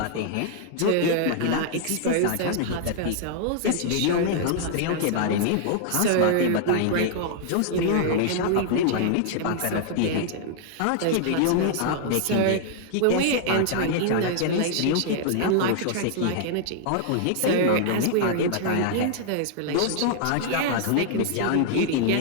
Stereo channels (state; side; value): different; both; correlation -0.01